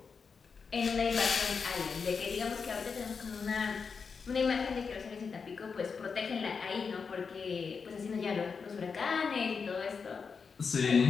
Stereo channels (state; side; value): quieter; right; 5.5 dB